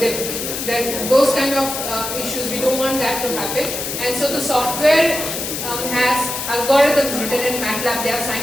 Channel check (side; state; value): left; noise; hiss, 4 dB below the sound